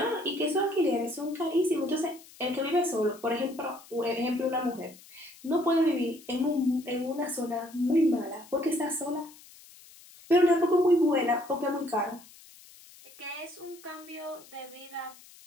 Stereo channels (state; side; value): noise; left; hiss, 22 dB below the sound